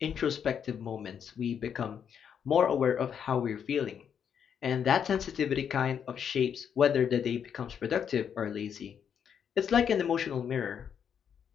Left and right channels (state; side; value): quieter; right; 8.0 dB